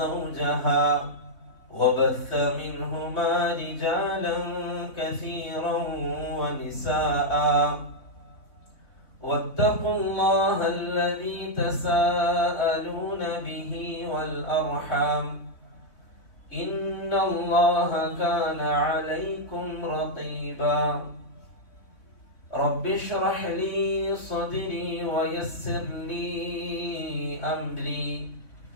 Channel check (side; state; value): right; late; 3.6 ms